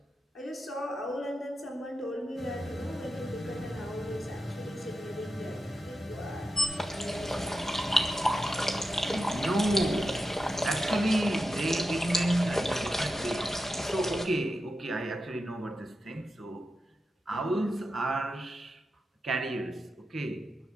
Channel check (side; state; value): both; normal; correlation 0.89